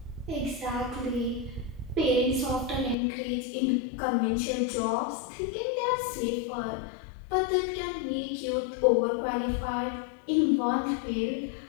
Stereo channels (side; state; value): right; drops out; at 3.0 s